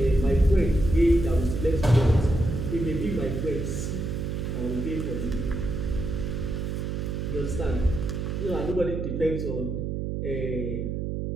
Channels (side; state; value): right; noise; hum, 3 dB below the sound